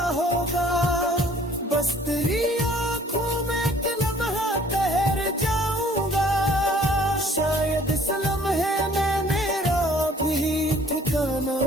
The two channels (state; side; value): normal; both; correlation 0.56